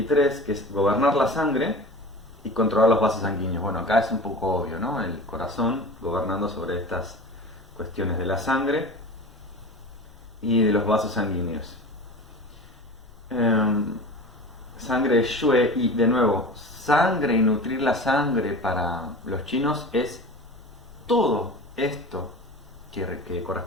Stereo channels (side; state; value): left; noise; rumble, 24 dB below the sound